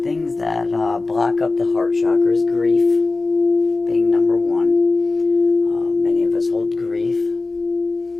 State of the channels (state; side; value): quieter; right; 3.5 dB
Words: things that block up the heart chakra is grief, being number one. Many of us hold grief.